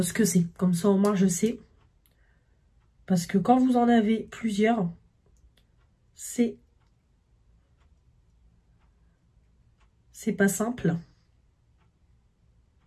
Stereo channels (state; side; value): identical; both; correlation 1.00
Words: que c'est. Comme ça, au moins, je sais. Parce que quand vous en avez plusieurs, c'est pas simple.